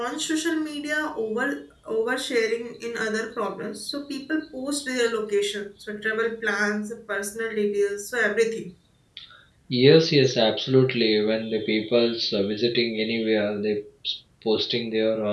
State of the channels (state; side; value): identical; both; correlation 1.00